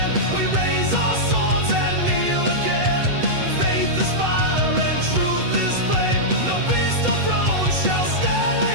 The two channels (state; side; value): late; left; 8.0 ms